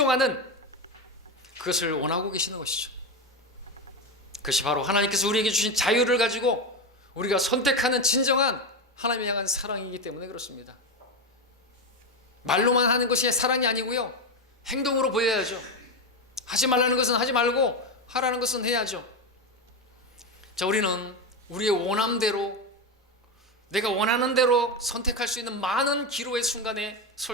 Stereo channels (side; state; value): both; normal; correlation 0.13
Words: 그것을 원하고 계시는 것이죠. 그것이 바로 하나님께서 우리에게 주신 자유를 가지고 우리가 선택하는 진정한 하나님을 향한 사랑이기 때문에 그렇습니다. 말로만 하는 것이 사랑이 아니고요, 행동으로 보여야죠. 하지 말라는 것은 하지 말고 하라는 것은 해야죠. 자, 우리는 우리의 원함대로, 내가 원하는 대로 선택할 수 있는 많은 기로의 순간에